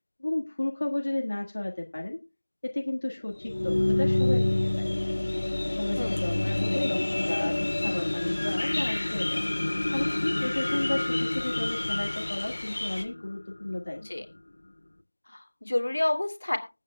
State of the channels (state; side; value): inverted; both; correlation -1.00